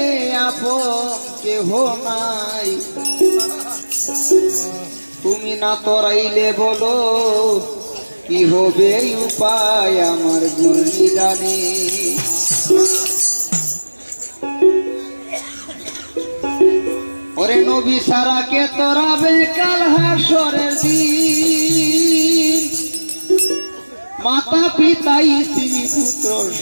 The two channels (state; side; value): inverted; both; correlation -1.00